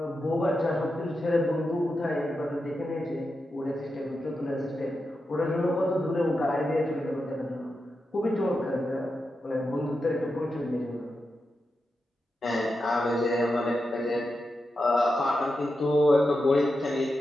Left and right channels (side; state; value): both; normal; correlation 0.89